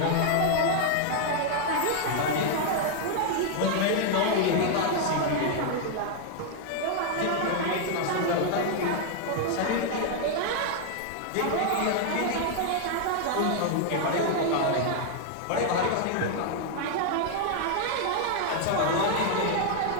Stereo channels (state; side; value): different; both; correlation 0.00